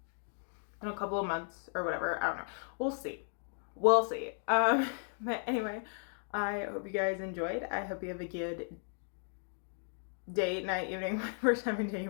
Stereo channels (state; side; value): silent; right; 54 dB below the other